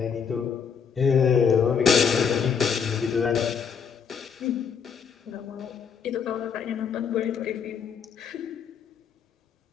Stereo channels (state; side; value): quieter; right; 6.8 dB